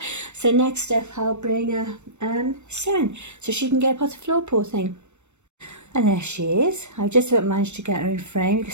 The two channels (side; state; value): left; late; 0.83 ms